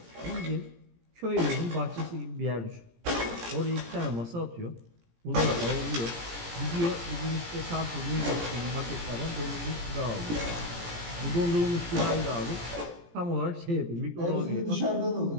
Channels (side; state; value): left; late; 17 ms